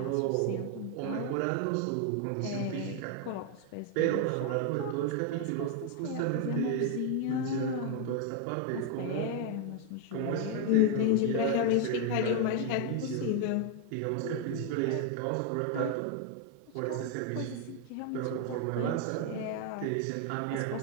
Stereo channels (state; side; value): different; both; correlation 0.00